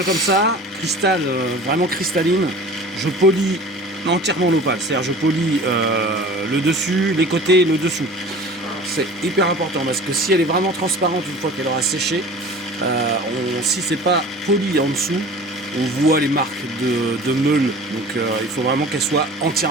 comme ça, cristal, vraiment cristalline, je polis entièrement l'opale. C'est-à-dire je polis le dessus, les côtés, le dessous. C'est hyper important parce que si elle est vraiment transparente une fois qu'elle aura séché, si c'est pas poli en dessous, on voit les marques de meule. Donc il faut vraiment qu'elle soit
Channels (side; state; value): both; normal; correlation 0.41